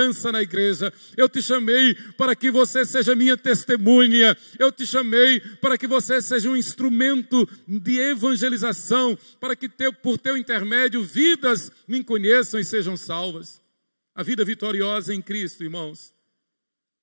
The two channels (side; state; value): both; inverted; correlation -1.00